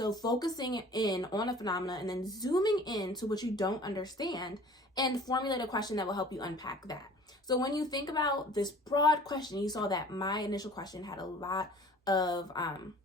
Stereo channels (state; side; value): normal; both; correlation 0.47